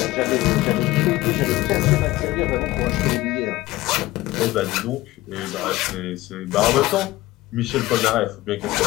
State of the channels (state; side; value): quieter; right; 17.9 dB